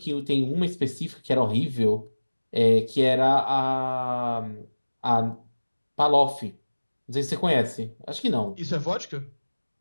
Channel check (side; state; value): both; inverted; correlation -1.00